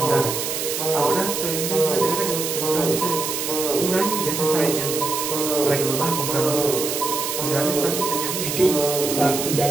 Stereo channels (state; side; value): noise; right; hiss, 3 dB below the sound